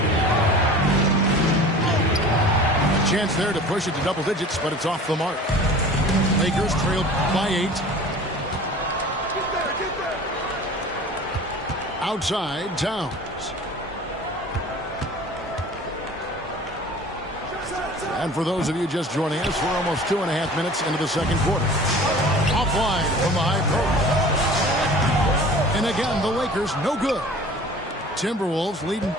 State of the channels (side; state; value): both; normal; correlation 0.43